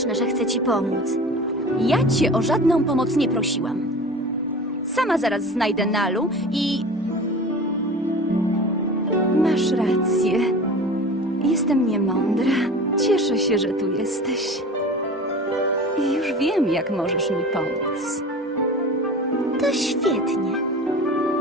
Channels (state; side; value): normal; both; correlation 0.37